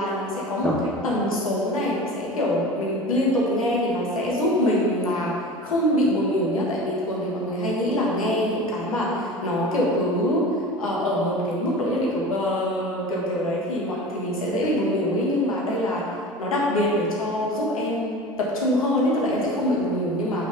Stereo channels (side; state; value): both; normal; correlation 0.35